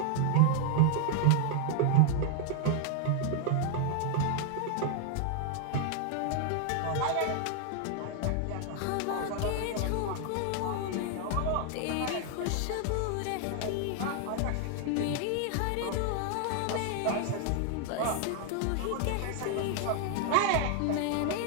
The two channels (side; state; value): both; different; correlation 0.00